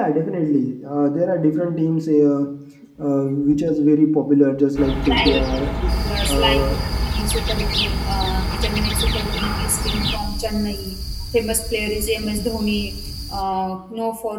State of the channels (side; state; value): both; identical; correlation 1.00